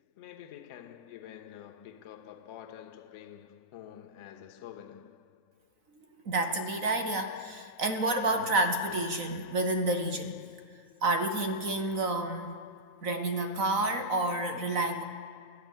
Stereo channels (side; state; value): left; late; 4.0 ms